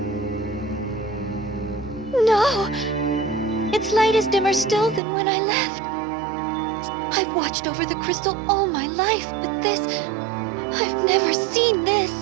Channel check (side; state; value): left; drops out; at 5.0 s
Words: No! Its light is dimmer still than when I left. I've watched over the crystal all my life, but this... I've never seen